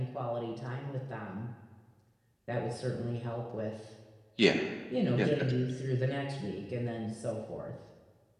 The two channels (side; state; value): both; identical; correlation 1.00